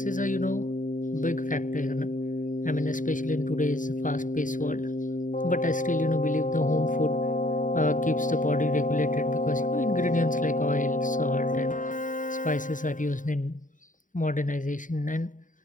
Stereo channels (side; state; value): right; late; 0.38 ms